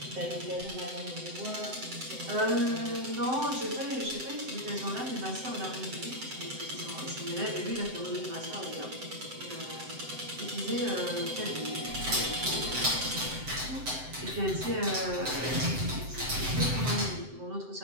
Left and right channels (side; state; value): left; late; 7.8 ms